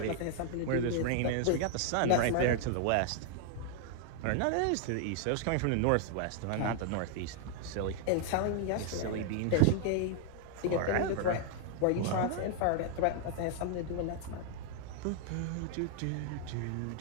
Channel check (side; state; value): both; different; correlation 0.00